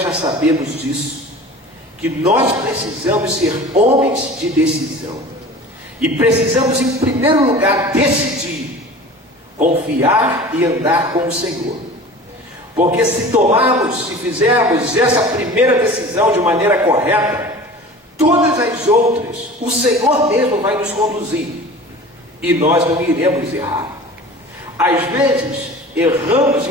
já sabemos disso, que nós precisamos ser homens de decisão, e precisamos, em primeiro lugar, decidir, confiar e andar com o Senhor. Porque se tomarmos, se fizermos essa primeira decisão de maneira correta, todas as outras, o Senhor mesmo vai nos conduzir, e nós não iremos errar. Às vezes, erramos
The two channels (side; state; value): both; normal; correlation 0.39